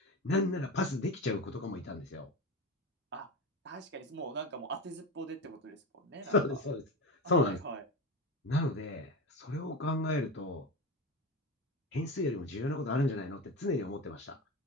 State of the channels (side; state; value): both; normal; correlation 0.23